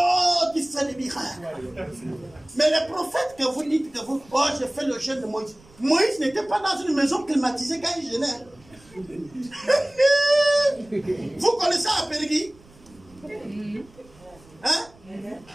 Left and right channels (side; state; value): right; noise; rumble, 26 dB below the sound